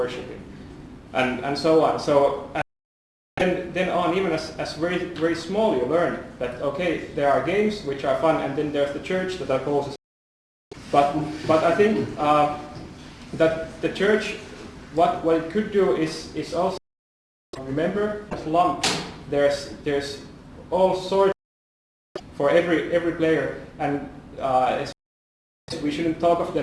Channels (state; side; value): identical; both; correlation 1.00